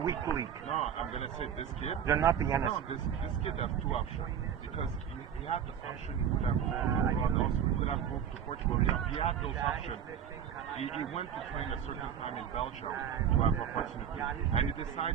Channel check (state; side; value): quieter; left; 8.7 dB